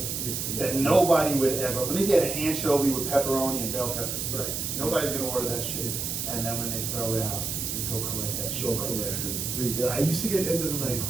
that nobody would ever. Let me get an anchovy with pepperoni and bell peppers. Right. Nobody's gonna order that shit. And then when they throw it out, you go collect that shit. Show collected. Yeah, I used to get end of the night.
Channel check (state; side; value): noise; right; hiss, 3 dB below the sound